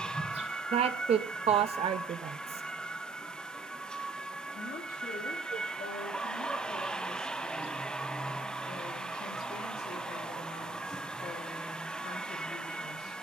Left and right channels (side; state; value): left; quieter; 4.2 dB